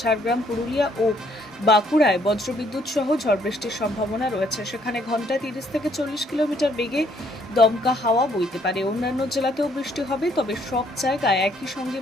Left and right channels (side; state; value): both; normal; correlation 0.67